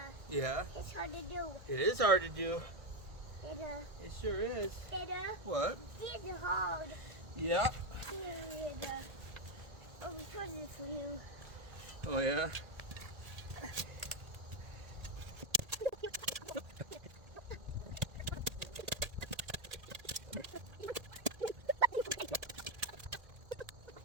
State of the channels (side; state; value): left; late; 1.7 ms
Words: Yeah. it's hard to do. It is hard to do. Dada, It sure is. Dada, What? it's hard. Yeah. Dada, oh, we put this for you. Oh yeah?